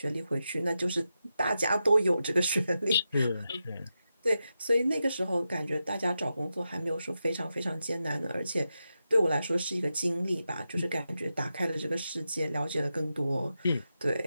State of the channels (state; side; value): inverted; both; correlation -0.89